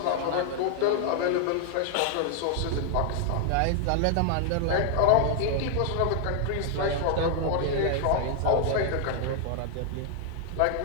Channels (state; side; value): different; both; correlation 0.00